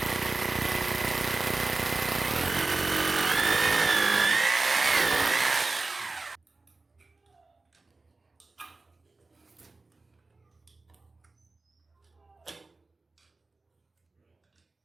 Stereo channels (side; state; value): left; quieter; 3.5 dB